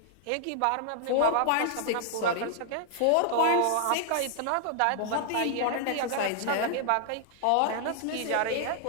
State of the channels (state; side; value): different; both; correlation 0.00